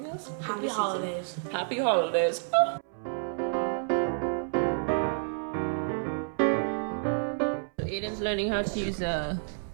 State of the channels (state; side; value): silent; left; 58 dB below the other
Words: else. Happy holidays. Happy holidays. Oh. So Aiden's learning how to use a